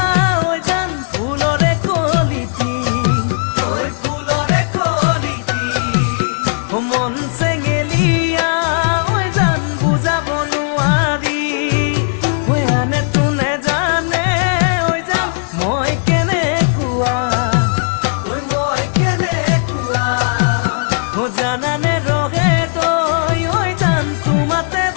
মন চেঙেলিয়া জান বুজাব নোৱাৰি আনে তোনে জানে জান মই কেনেকুৱা জানানে ৰহে তই জান তোমাতে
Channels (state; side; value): silent; right; digital silence